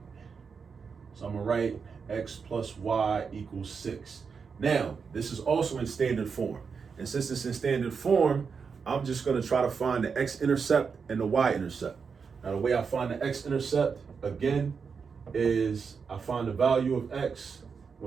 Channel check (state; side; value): quieter; left; 5.7 dB